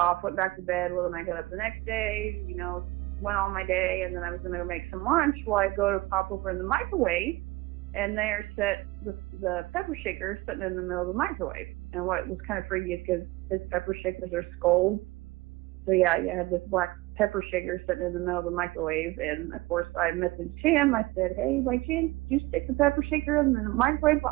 went back to bed. Well, then I got up the next day, went on my day, and then I was going to go make some lunch. Well, I go to pop over in the microwave, and there sat the pepper shaker sitting in the middle of the microwave. And what was kind of freaky is because his pepper shakers are skulls. So yeah, you had this black pepper shaker sitting in the middle of the microwave. And of course I messaged him. I said, hey, by chance, did you stick the pepper shaker in the microwave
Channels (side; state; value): left; quieter; 20.5 dB